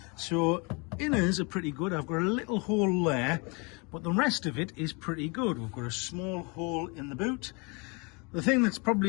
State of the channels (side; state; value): right; quieter; 30.8 dB